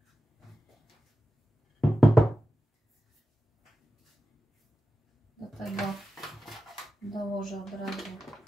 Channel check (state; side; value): normal; both; correlation 0.93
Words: Do tego dołożę od razu